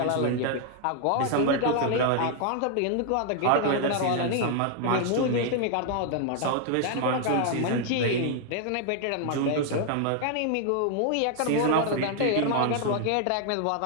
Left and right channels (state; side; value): different; both; correlation 0.00